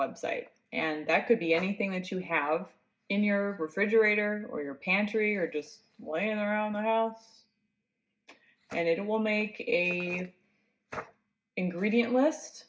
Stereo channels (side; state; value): both; identical; correlation 1.00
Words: And that could be anything that you have in your refrigerator or your pantry or just laying around the house. And it will make a ingredient list